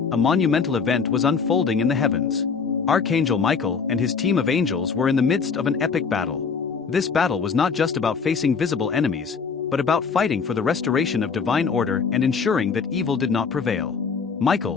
a monumental event was unfolding in the heavens. Archangel Michael and his team of angels were in the midst of an epic battle. This battle was not just about facing visible enemies, but about fighting for the restoration of divine order and ensuring that evil did not prevail.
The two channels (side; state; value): right; quieter; 5.6 dB